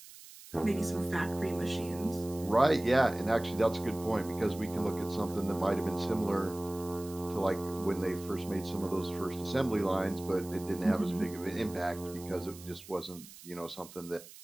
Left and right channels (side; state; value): right; noise; hiss, 18 dB below the sound